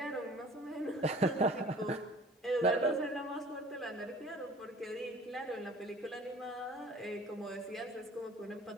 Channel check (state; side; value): normal; both; correlation 0.47